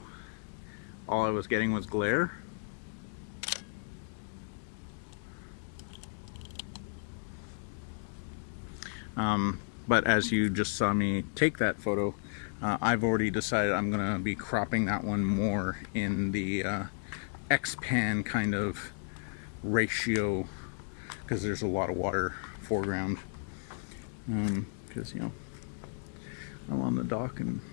all I was getting was glare. But as you just saw me take that photo, I've already decided I'm gonna be cropping that one more in the X-pan kind of ratio, because there's a lot of water foreground, because you know, I'm on the dock and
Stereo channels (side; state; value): right; silent; digital silence